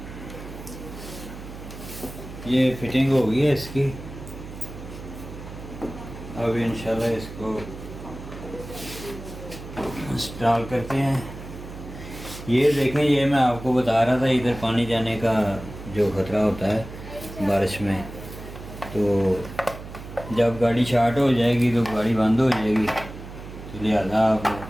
ये फिटिंग हो गई है इसकी। अब इंशाल्लाह इसको इंस्टॉल करते हैं। ये देखें, ये मैं आपको बता रहा था इधर पानी जाने का जो ख़तरा होता है बारिश में, तो जब गाड़ी स्टार्ट हो जाएगी तो गाड़ी बंद हो जाएगी, तो लिहाजा आप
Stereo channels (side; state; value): right; noise; hum, 13 dB below the sound